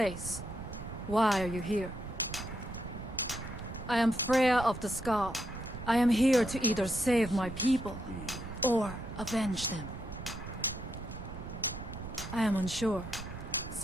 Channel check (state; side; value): noise; right; rumble, 10 dB below the sound